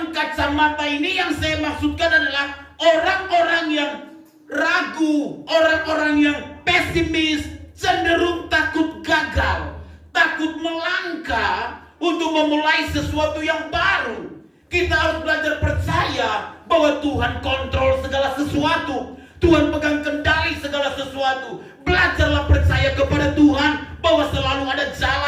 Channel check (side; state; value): both; identical; correlation 1.00